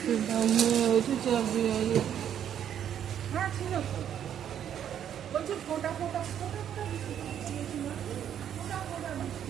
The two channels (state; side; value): quieter; left; 9.6 dB